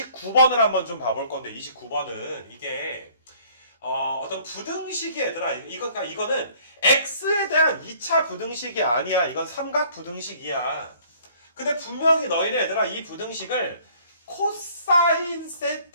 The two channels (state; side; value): inverted; both; correlation -0.56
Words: 한번 좀 봐볼 건데 29번은 이게 어떤 부등식이 얘들아 그러니까 이거는 x에 대한 2차 부등식이 아니야. 이건 삼각 부등식이야. 근데 분명히 너희는 얘들아 이 부등식을 코사인